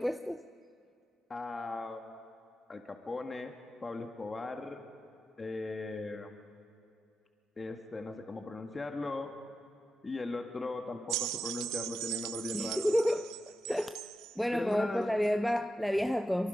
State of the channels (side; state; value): both; normal; correlation 0.90